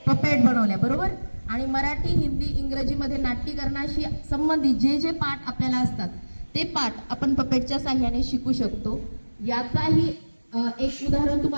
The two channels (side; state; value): both; inverted; correlation -1.00